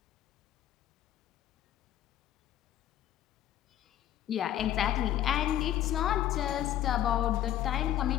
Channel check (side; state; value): right; quieter; 12.1 dB